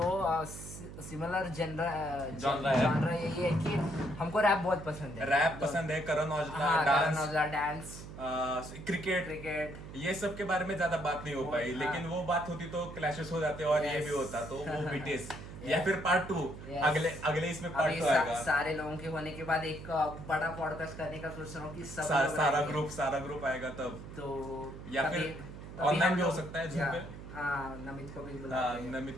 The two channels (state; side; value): noise; right; hum, 12 dB below the sound